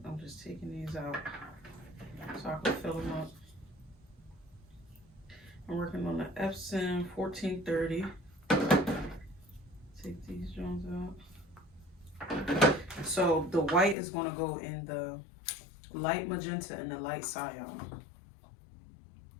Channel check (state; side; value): drops out; right; at 14.0 s